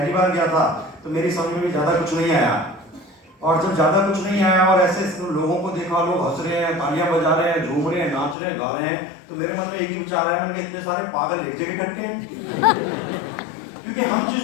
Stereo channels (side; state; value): right; drops out; at 8.3 s